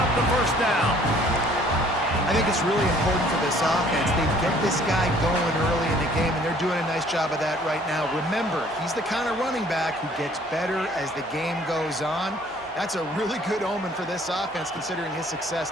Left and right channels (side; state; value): both; normal; correlation 0.57